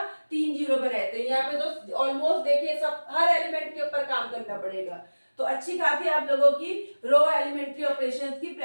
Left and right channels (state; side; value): inverted; both; correlation -1.00